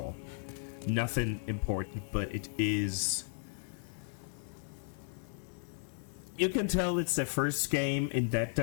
Nothing important, but it is. You can tell it's their first game in that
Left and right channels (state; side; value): silent; right; 54 dB below the other